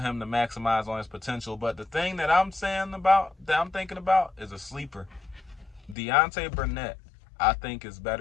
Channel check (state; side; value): drops out; right; at 6.0 s